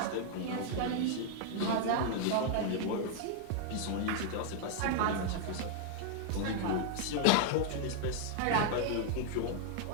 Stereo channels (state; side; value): different; both; correlation 0.00